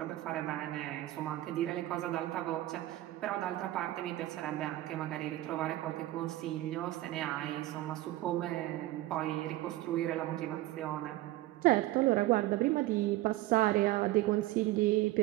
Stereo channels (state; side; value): quieter; left; 16.6 dB